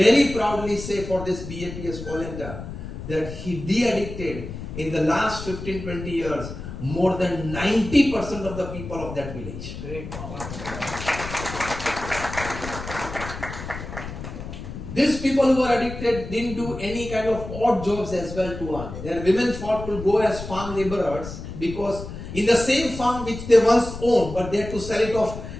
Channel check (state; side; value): noise; left; rumble, 10 dB below the sound